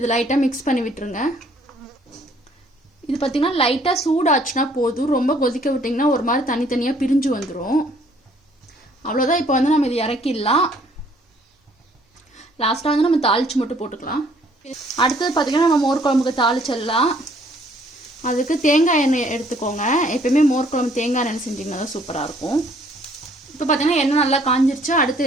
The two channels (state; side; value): normal; both; correlation 0.62